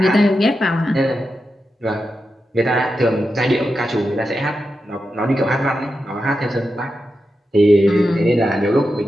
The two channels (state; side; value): normal; both; correlation 0.89